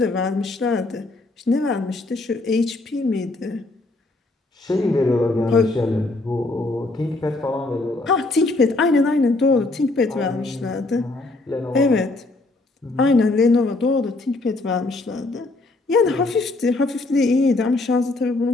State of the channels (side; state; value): right; quieter; 3.1 dB